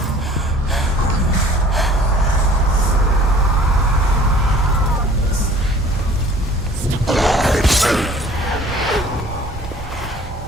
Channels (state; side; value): normal; both; correlation 0.50